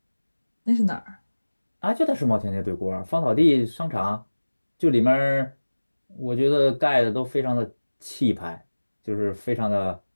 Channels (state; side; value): inverted; both; correlation -1.00